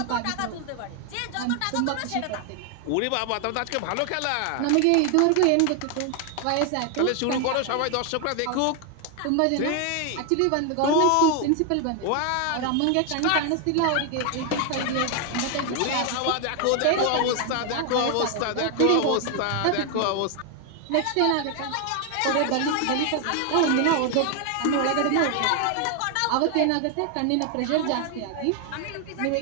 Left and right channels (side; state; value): both; different; correlation 0.01